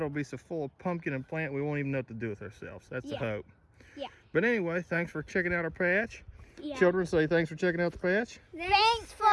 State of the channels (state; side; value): identical; both; correlation 1.00